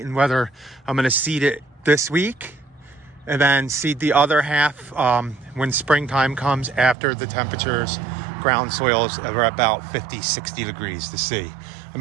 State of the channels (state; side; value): drops out; left; at 7.0 s